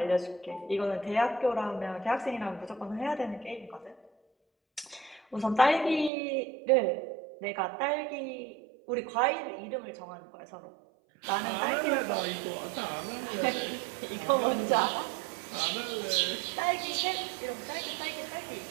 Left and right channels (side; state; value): left; drops out; at 6.1 s